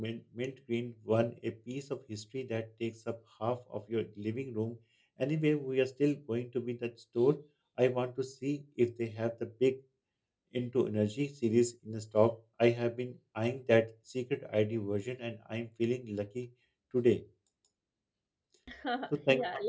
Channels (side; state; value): both; identical; correlation 1.00